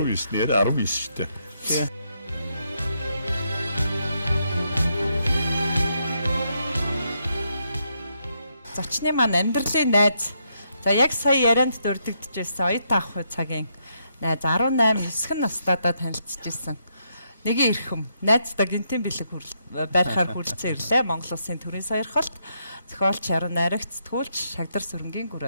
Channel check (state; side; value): inverted; both; correlation -0.78